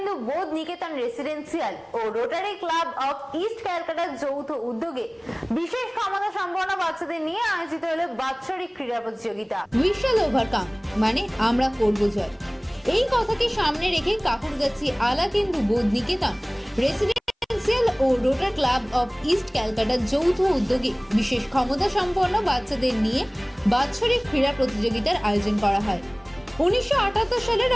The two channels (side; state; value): both; identical; correlation 1.00